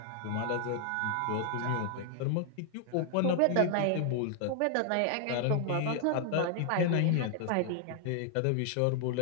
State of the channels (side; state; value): both; different; correlation 0.00